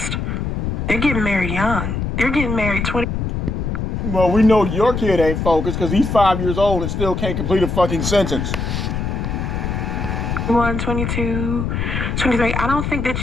They're getting married young. They're getting married 20. Well, we know your kid ain't focused because he's 5 years old and still can't complete a fucking sentence. 21, 22, 23. I don't think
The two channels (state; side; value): noise; left; rumble, 2 dB below the sound